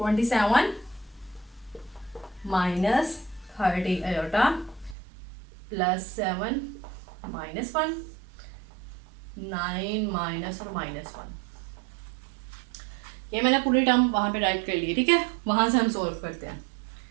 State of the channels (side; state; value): left; drops out; at 5.0 s